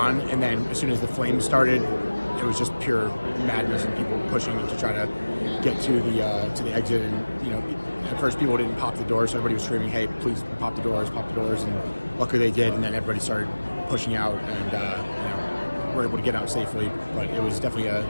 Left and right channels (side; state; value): both; inverted; correlation -1.00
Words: And then as soon as the flames started, it was just pure madness and people pushing to try to get to the exit. And, at first people didn't pop the doors, so everybody was screaming, hey, please pop the doors, and luckily they did, and then everybody started pushing out, and were able to get out safely. But it was definitely